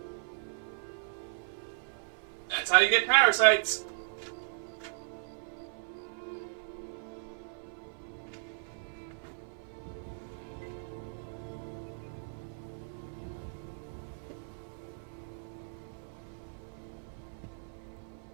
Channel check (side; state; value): left; silent; 54 dB below the other